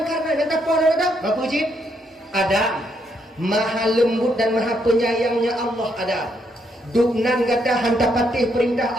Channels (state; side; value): normal; both; correlation 0.75